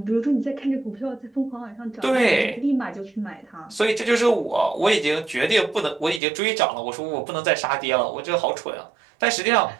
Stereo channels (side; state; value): left; drops out; at 6.2 s